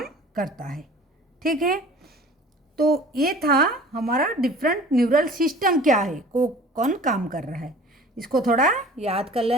करता है। ठीक है, तो ये था हमारा डिफरेंट न्यूरल सिस्टम क्या है, को कौन काम कर रहा है, इसको थोड़ा याद कर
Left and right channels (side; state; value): both; normal; correlation 0.45